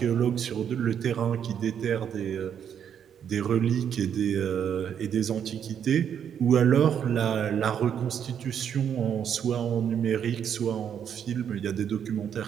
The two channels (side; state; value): left; quieter; 8.5 dB